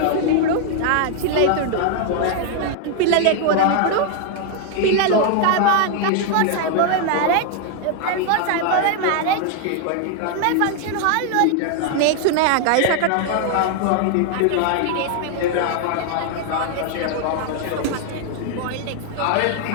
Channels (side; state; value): both; different; correlation 0.00